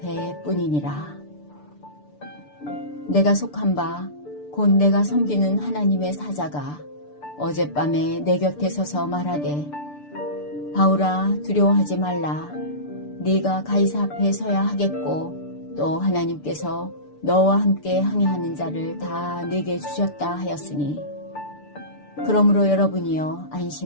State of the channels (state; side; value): late; right; 6.8 ms